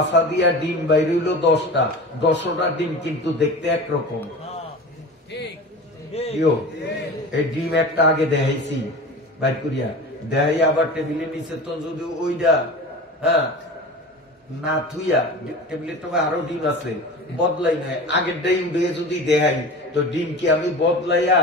দিয়া ডিম বাইর হইল 10টা, 10টা ডিম কিন্তু দেখতে একরকম। এই ডিম একটা আগে দেখাইছি বাইর করিয়া, দেখাই আবার টেবিলে নিচে, তো যদি ওইটা না থুইয়া টেবিলের তো আরো ডিম আছে, বদলাই নাই, আগেরটাই উঠে যদি দেখাই, তো ডিম কি আমি বদলাইয়া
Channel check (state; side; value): normal; both; correlation 0.33